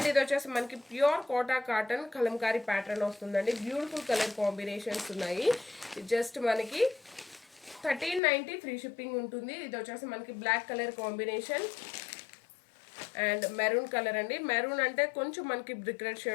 ఇది వచ్చేసి మనకి pure Kota cotton Kalamkari pattern వస్తుందండి. బ్యూటిఫుల్ కలర్ కాంబినేషన్స్ ఉన్నాయి. జస్ట్ మనకి 1390, ఫ్రీ షిప్పింగ్ ఉంటుంది. ఇది వచ్చేసి మనకి black colour combination and maroon colour అండి. మెరూన్ అంటే కొంచెం మనకి బ్రిక్ రెడ్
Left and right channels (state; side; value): drops out; right; at 8.2 s